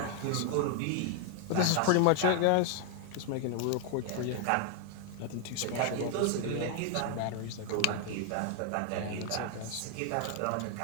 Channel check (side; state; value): both; different; correlation 0.00